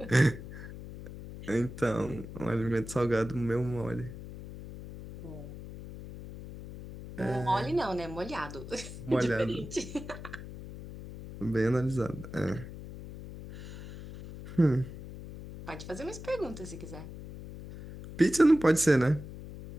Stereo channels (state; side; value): noise; left; hum, 12 dB below the sound